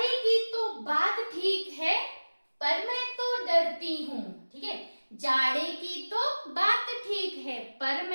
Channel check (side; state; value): both; inverted; correlation -1.00